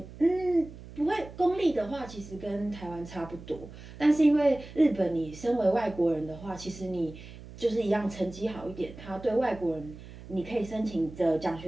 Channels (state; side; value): noise; right; hum, 16 dB below the sound